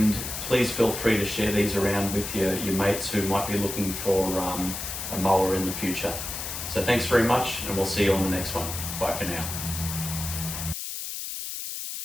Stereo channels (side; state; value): left; noise; hiss, 6 dB below the sound